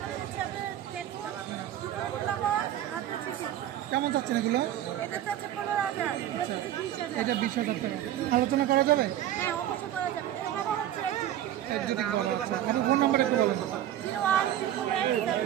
কেমন চাচ্ছেন এগুলো? এটা 20,000 টাকা। আলোচনা করা যাবে? ফোন নাম্বার একটু বলুন।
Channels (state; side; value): quieter; left; 12.0 dB